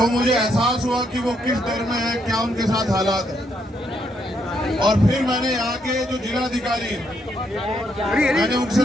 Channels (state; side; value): normal; both; correlation 0.75